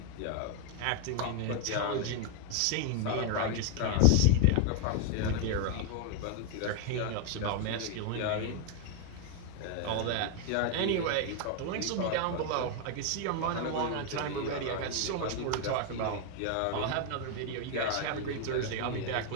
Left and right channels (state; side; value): different; both; correlation 0.01